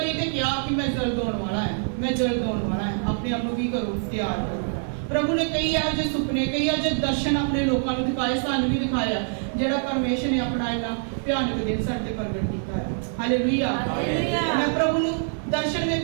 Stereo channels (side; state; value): left; silent; digital silence